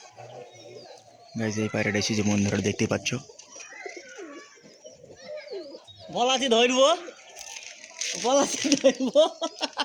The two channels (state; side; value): identical; both; correlation 1.00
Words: গাইস এই পায়রাটা এসেছে বন্ধুরা দেখতেই পাচ্ছ। বলাছি ধরবো, বলাছি ধরবো।